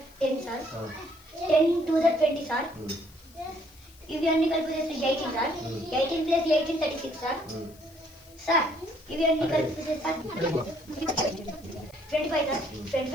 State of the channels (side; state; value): left; noise; hiss, 26 dB below the sound